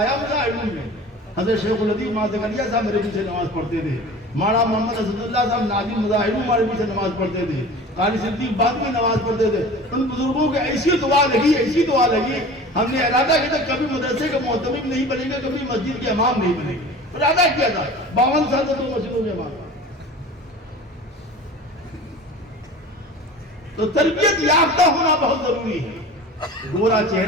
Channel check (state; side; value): normal; both; correlation 0.39